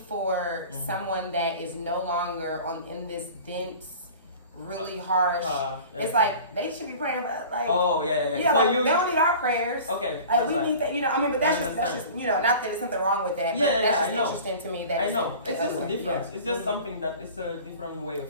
someone that is no longer in this dense, really harsh. It's like they should be praying for like. Oh yeah. Yeah, so like, they don't need our prayers. Okay. We need that, you know. I mean, but that's just you know, not that there's something wrong with that. That's just interesting to me. That I know. It's just a difference. It's just something that it's a different way of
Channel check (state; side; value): inverted; both; correlation -0.41